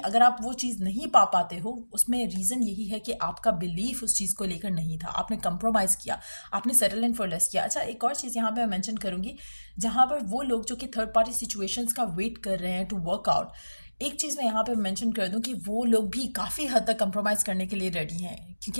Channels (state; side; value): inverted; both; correlation -1.00